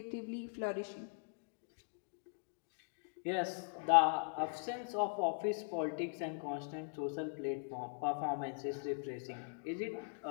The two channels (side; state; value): right; silent; digital silence